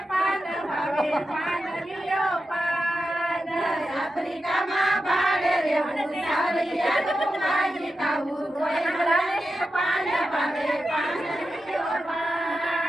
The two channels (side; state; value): both; normal; correlation 0.90